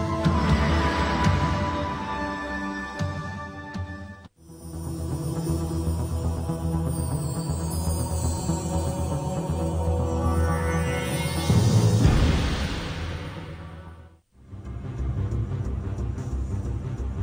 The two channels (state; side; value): identical; both; correlation 1.00